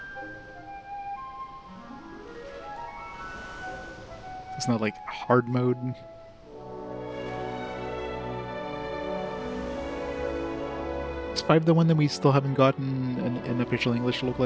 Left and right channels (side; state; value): both; identical; correlation 1.00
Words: It's not like hard mode. Is 5 the one that we still haven't gotten an official English